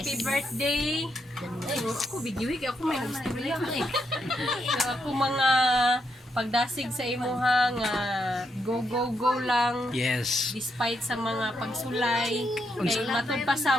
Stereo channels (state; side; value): normal; both; correlation 0.80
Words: birthday. Ako, video ako may gusto niya. Ako mga pagdasig sa imuha nga go lang. Yes. Despite sa mga pagsulay kay matud pa